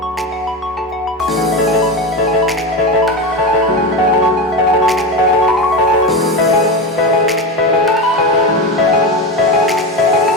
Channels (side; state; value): both; normal; correlation 0.19